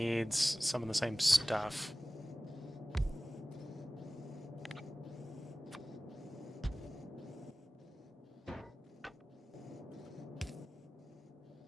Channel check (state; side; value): normal; both; correlation 0.97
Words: some of the same stuff.